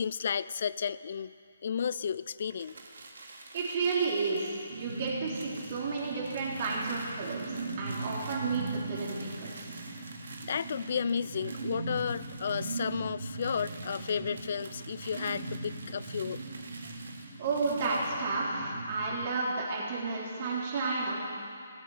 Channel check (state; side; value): inverted; both; correlation -0.69